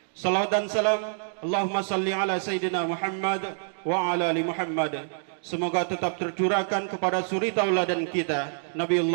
Salawat dan salam Allahumma salli ala Sayyidina Muhammad wa ala ali Muhammad. Semoga tetap tercurahkan kepada suri tauladan kita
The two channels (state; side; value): silent; left; digital silence